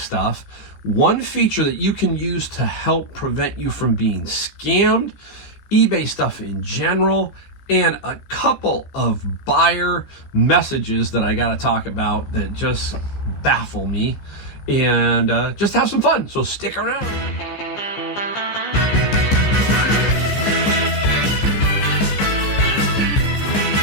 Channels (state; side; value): late; right; 15 ms